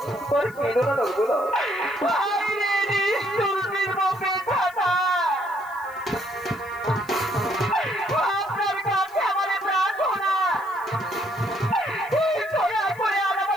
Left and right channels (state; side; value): noise; left; hiss, 25 dB below the sound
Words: আপনার কাছে আমার প্রার্থনা, দয়া করে